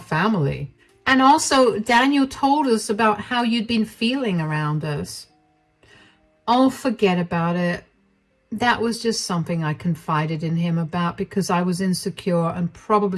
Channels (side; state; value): both; identical; correlation 1.00